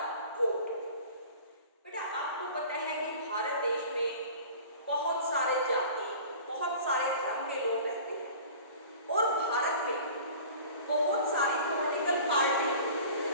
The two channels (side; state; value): both; inverted; correlation -0.42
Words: वोट। बेटा, आपको पता है कि भारत देश में बहुत सारे जाति, बहुत सारे धर्म के लोग रहते हैं और भारत में बहुत सारी पॉलिटिकल पार्टी